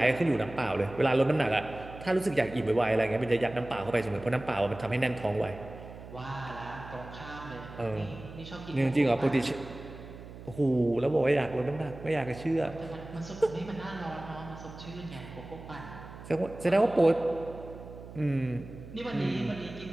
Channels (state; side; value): noise; right; hum, 15 dB below the sound